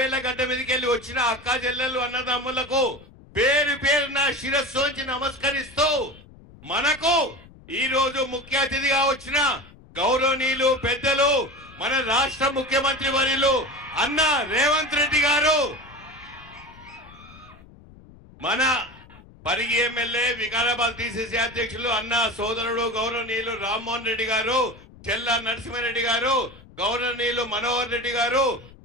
గడ్డ మీదకి వెళ్ళి వచ్చిన అక్క చెల్లెలు అన్నదమ్ములకు పేరు పేరున శిరస్సు వంచి నమస్కరిస్తూ మనకు ఈ రోజు ముఖ్య అతిథిగా వచ్చిన గౌరవనీయులు పెద్దలు మన రాష్ట్ర ముఖ్యమంత్రి వర్యులు అన్న రేవంత్ రెడ్డి గారు, మన పరిగి ఎమ్మెల్యే వికారాబాద్ డిసిసి అధ్యక్షులు అన్న సోదరుడు గౌరవనీయులు రామ్మోహన్ రెడ్డి గారు, చెల్ల నరసింహారెడ్డి గారు, గౌరవనీయులు మనోహర్ రెడ్డి గారు,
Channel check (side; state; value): left; noise; rumble, 22 dB below the sound